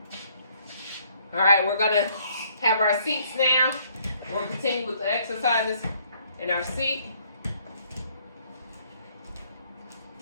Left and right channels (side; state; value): both; inverted; correlation -0.65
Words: All right, we're gonna have our seats now. We'll continue with the exercises in our seat.